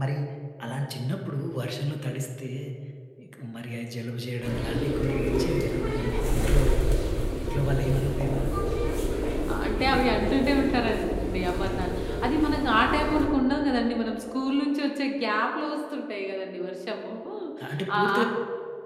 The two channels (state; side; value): identical; both; correlation 1.00